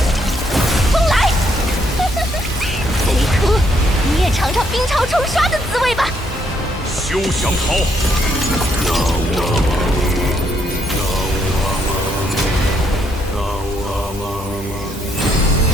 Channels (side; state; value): both; normal; correlation 0.73